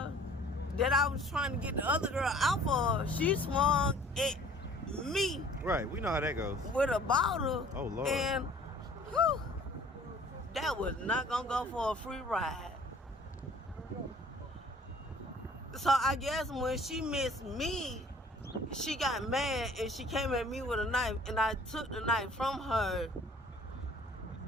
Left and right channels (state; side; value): normal; both; correlation 0.52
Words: that I was trying to get the other girl out for, she swung at me. Right, we know how that goes. With a bottle. Oh, Lord. And, whew, that was not gonna go for a free ride. So I guess when she missed me, she got mad and she came at me with a knife, and I took the knife from her